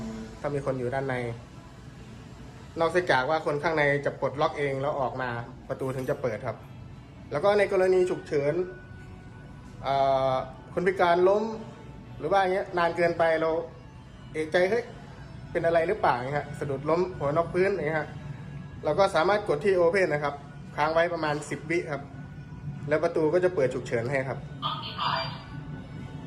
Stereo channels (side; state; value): both; identical; correlation 1.00